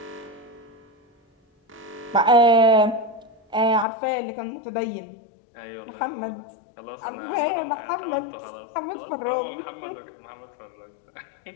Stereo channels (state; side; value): drops out; right; at 3.9 s